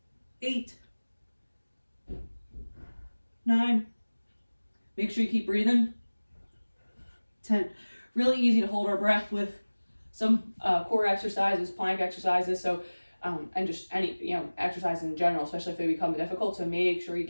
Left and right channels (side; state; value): both; inverted; correlation -1.00